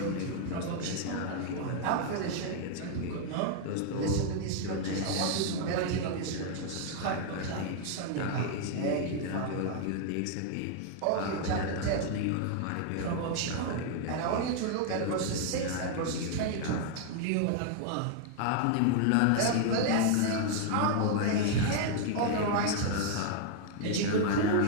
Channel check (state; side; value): different; both; correlation 0.00